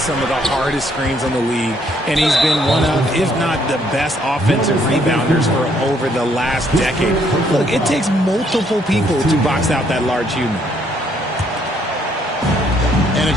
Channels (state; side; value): normal; both; correlation 0.68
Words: of the hardest screens in the league, and he's been one of, if not the best offensive rebounders for over the last decade. Look, it takes multiple people to box out that large human. And